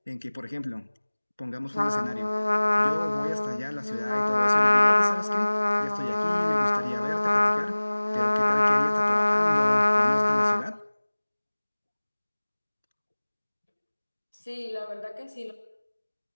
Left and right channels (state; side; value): inverted; both; correlation -1.00